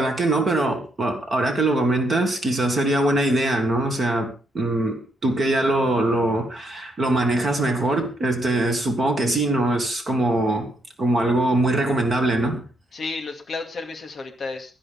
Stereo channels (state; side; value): normal; both; correlation 0.75